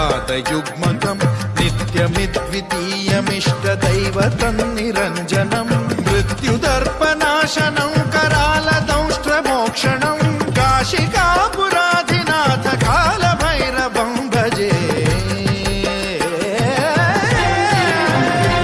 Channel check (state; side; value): identical; both; correlation 1.00